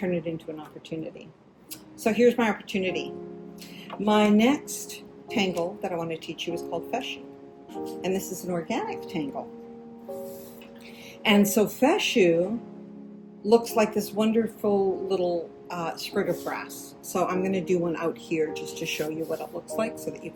it into an opportunity. So here's my opportunity. My next tangle that I want to teach you is called Fescue, and this is an organic tangle. And so Fescue looks like this wonderful little sprig of grass. So I'm going to do one out here just to show you what it looks like so that you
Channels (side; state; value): both; identical; correlation 1.00